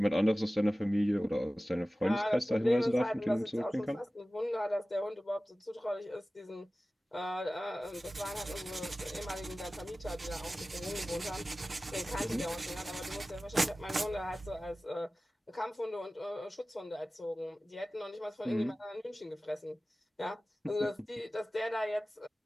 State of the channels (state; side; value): normal; both; correlation 0.97